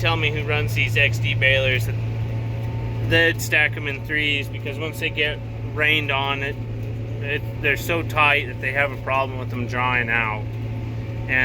me who runs these XD balers that they'd stack them in threes, because once they get rained on, they're so tight that they have a problem with them drying out.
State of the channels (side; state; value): both; identical; correlation 1.00